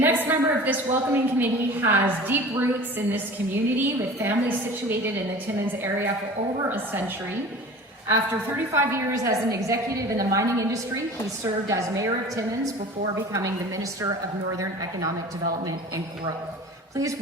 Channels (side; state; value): both; normal; correlation 0.39